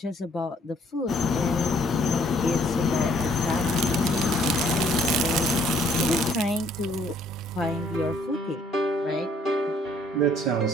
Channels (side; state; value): both; normal; correlation 0.63